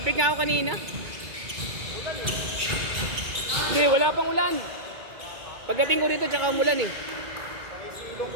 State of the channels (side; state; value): left; late; 2.2 ms